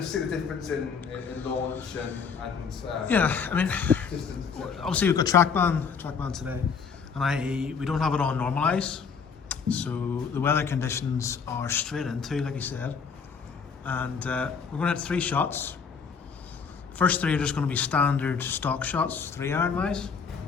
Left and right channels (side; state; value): right; quieter; 5.9 dB